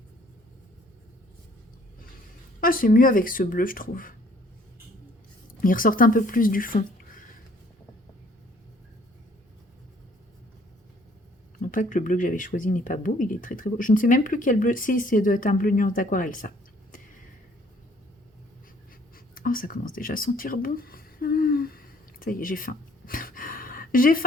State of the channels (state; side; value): normal; both; correlation 0.60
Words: Ah, c'est mieux avec ce bleu, je trouve. Il ressort un peu plus du fond. Non pas que le bleu que j'avais choisi n'est pas beau, il est très très beau. Je ne sais même plus quel bleu. Si, c'est doit être un bleu nuance d'aquarelle, ça. Oh, ça commence déjà à sentir bon. Ça y est, j'ai faim. J'ai